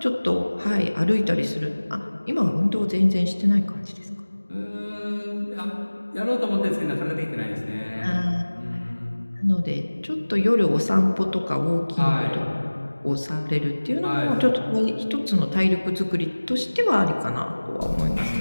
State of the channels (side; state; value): both; inverted; correlation -1.00